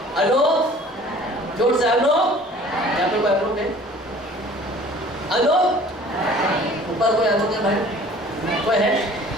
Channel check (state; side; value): normal; both; correlation 0.49